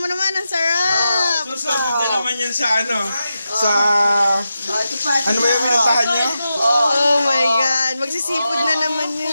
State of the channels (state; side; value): inverted; both; correlation -0.89